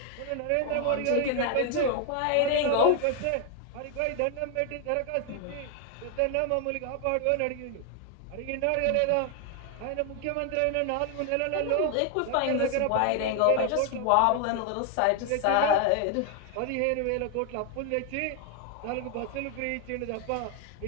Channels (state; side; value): different; both; correlation 0.00